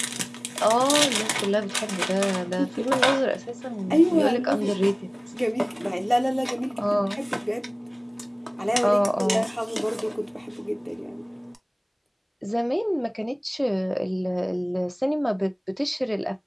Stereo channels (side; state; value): both; identical; correlation 1.00